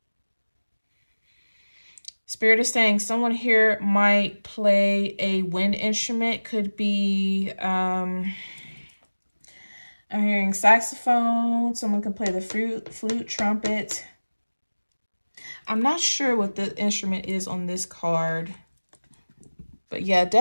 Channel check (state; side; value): inverted; both; correlation -1.00